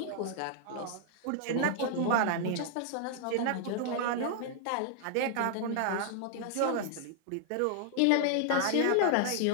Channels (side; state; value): both; different; correlation -0.01